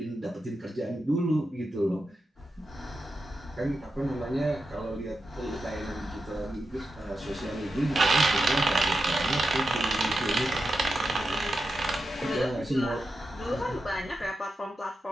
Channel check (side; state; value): both; normal; correlation 0.89